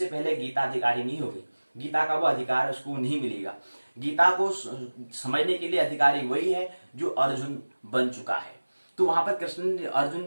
पहले गीता अधिकारी नहीं होगी, गीता का वो अधिकार उसको नहीं मिलेगा। गीता को समझने के लिए अधिकारी वही है जो अर्जुन बन चुका है। तो वहां पर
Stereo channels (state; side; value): inverted; both; correlation -1.00